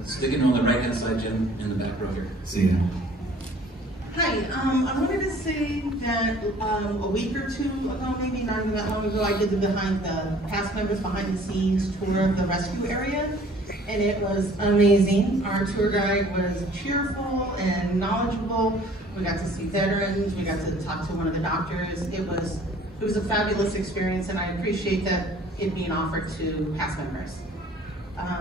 Sticking on the right-hand side, Jim, in the back row here. See ya. Hi, I wanted to say that a week or two ago, maybe not even that long ago, I did the past members behind the scenes tour of the rescue area, and it was amazing. Our tour guide was cheerful and knowledgeable. We got to see veterans. We got to talk to one of the doctors. It was a fabulous experience, and I appreciate that it being offered to past members.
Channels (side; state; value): both; normal; correlation 0.53